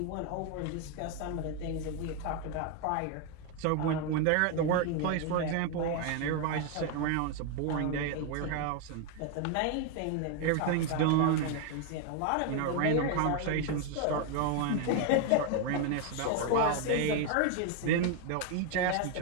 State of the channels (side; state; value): both; different; correlation 0.01